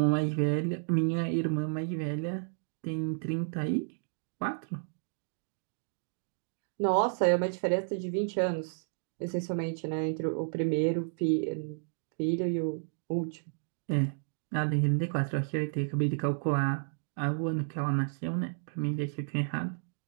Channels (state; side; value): silent; left; digital silence